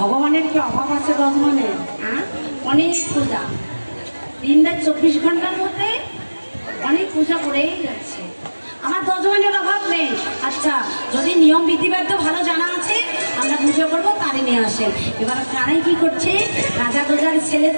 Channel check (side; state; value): both; inverted; correlation -1.00